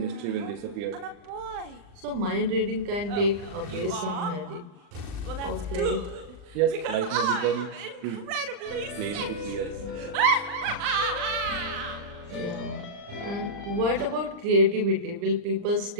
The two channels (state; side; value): late; left; 40 ms